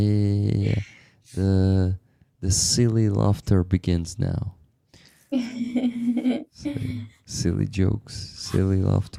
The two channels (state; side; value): identical; both; correlation 1.00